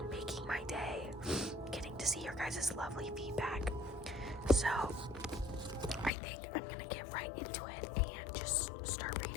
making my day getting to see your guys' lovely feedback. So I think I'm gonna get right into it and just start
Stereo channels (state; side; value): drops out; right; at 6.1 s